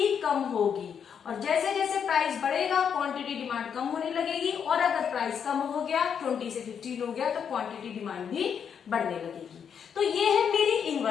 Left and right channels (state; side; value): quieter; right; 7.5 dB